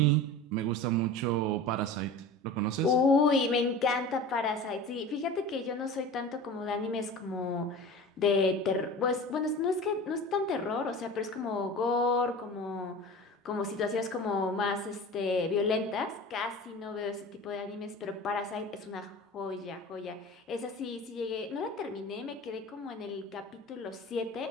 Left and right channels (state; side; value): normal; both; correlation 0.36